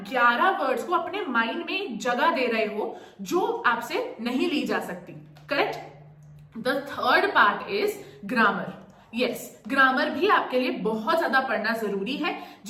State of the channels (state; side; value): identical; both; correlation 1.00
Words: 11 वर्ड्स को अपने माइंड में जगह दे रहे हो जो आपसे नहीं ली जा सकती। Correct? The third part is grammar. Yes, grammar भी आपके लिए बहुत ज्यादा पढ़ना जरूरी है,